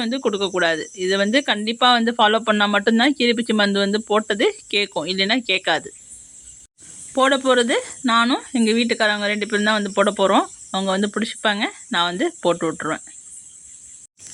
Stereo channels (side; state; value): both; identical; correlation 1.00